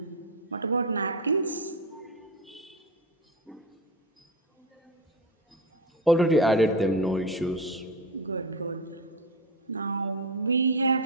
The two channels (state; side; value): normal; both; correlation 0.19